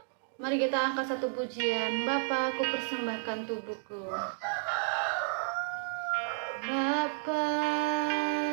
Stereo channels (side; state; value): left; silent; digital silence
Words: Mari kita angkat satu pujian. Bapa, aku persembahkan tubuhku. Bapa,